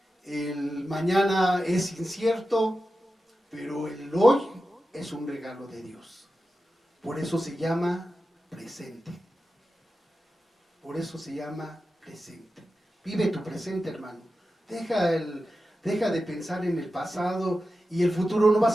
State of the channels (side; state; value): both; normal; correlation 0.92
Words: el mañana es incierto, pero el hoy es un regalo de Dios. Por eso se llama presente. Por eso se llama presente. Vive tu presente, hermano. Deja de pensar en el pasado y el futuro. No